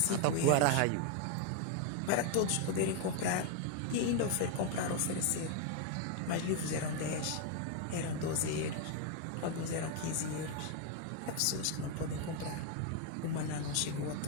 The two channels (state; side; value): different; both; correlation 0.01